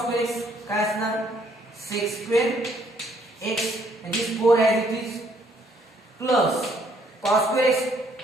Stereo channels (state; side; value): normal; both; correlation 0.67